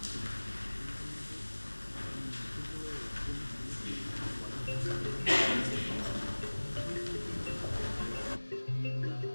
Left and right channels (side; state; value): both; inverted; correlation -1.00